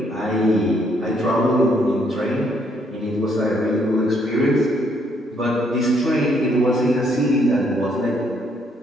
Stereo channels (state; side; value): normal; both; correlation 0.70